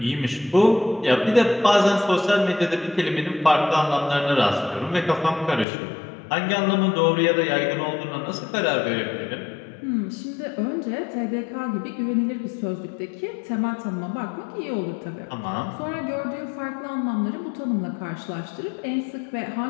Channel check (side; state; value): right; drops out; at 5.7 s